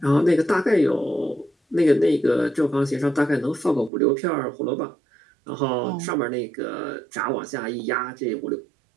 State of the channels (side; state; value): left; drops out; at 3.9 s